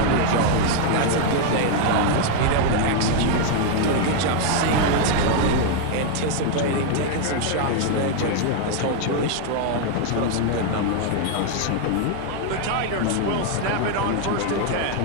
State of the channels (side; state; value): both; different; correlation 0.00